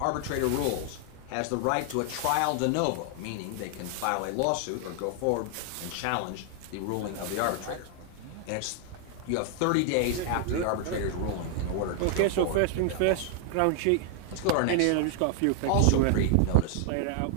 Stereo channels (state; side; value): different; both; correlation 0.00